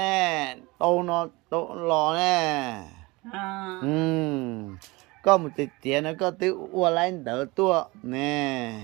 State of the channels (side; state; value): left; quieter; 23.6 dB